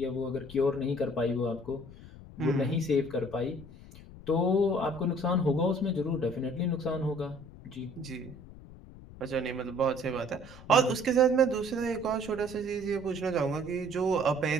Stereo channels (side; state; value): left; noise; rumble, 18 dB below the sound